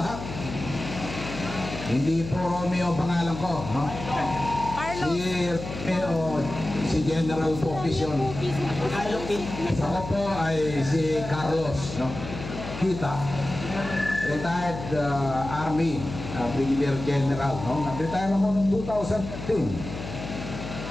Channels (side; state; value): left; noise; hum, 9 dB below the sound